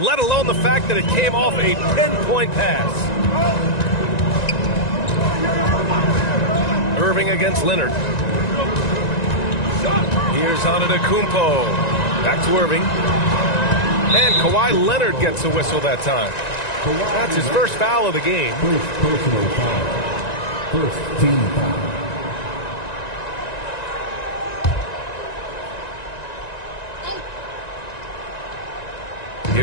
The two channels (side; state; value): right; late; 1.9 ms